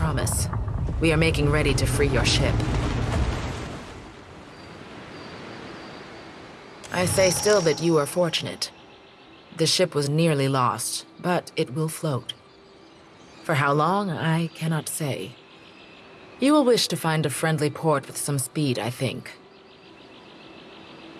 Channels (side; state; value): both; identical; correlation 1.00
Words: We are making ready to free your ship. I say still that you are fortunate. The ship was nearly lost, but it will float. For how long, I cannot say. You will wish to find a friendly port with some speed, I think.